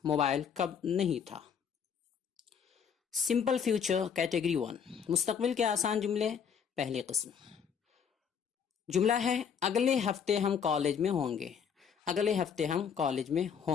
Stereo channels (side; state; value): right; quieter; 7.2 dB